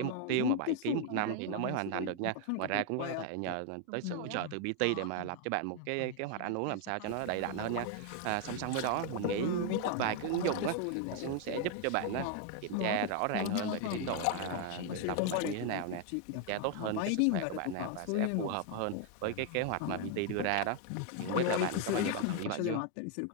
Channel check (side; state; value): both; different; correlation 0.01